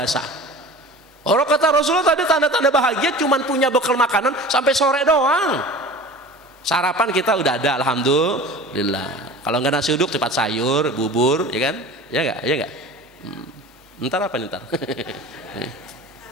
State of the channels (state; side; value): normal; both; correlation 0.38